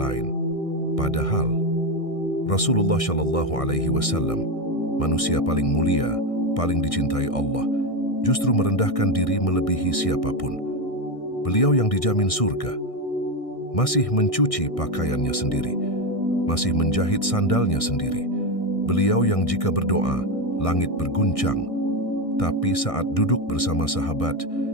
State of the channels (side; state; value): right; late; 1.6 ms